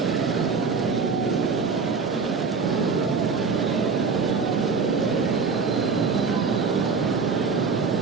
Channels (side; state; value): left; quieter; 5.0 dB